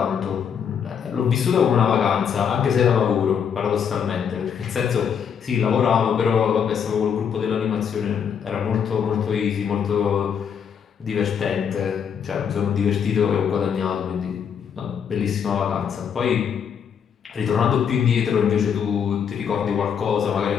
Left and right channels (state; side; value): quieter; right; 7.5 dB